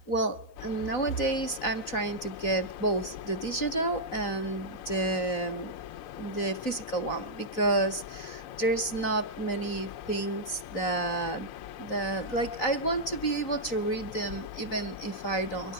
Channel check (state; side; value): late; right; 4.0 ms